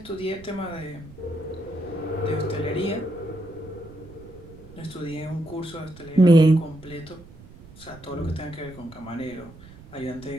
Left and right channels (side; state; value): right; noise; rumble, 19 dB below the sound